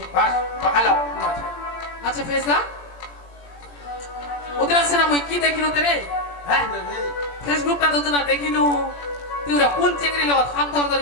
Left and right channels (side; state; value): right; late; 17 ms